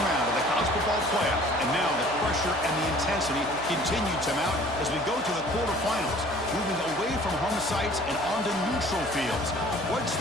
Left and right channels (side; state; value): right; noise; hum, 16 dB below the sound